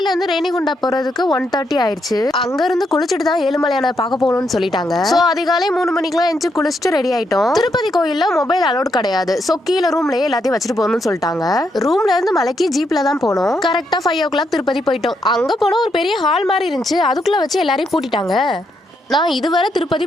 இருந்து ரேணிகுண்டா போறதுக்கு 1:30 ஆயிடுச்சு. அங்க இருந்து குளிச்சுட்டு தான் ஏழுமலையான பார்க்க போகணும்னு சொல்லிட்டாங்க. சோ அதிகாலை 3 மணிக்கெல்லாம் எஞ்சி குளிச்சுட்டு ரெடி ஆயிட்டோம். திருப்பதி கோயில்ல மொபைல் அலோட் கிடையாது. சோ கீழே ரூம்லயே எல்லாத்தையும் வச்சுட்டு போகணும்னு சொல்லிட்டாங்க. ரூம்ல இருந்து மலைக்கு ஜீப்ல தான் போனோம். கரெக்டா 5 o'clock திருப்பதி போயிட்டோம். அங்க போனா ஒரு பெரிய ஹால் மாதிரி இருந்துச்சு. அதுக்குள்ள வச்சு எல்லாரையும் பூட்டிட்டாங்க. நான் இதுவரை திருப்பதி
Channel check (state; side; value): normal; both; correlation 0.79